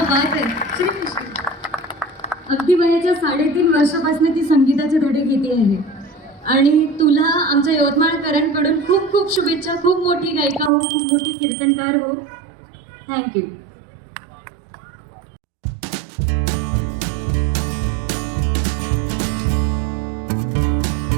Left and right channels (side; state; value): left; drops out; at 10.7 s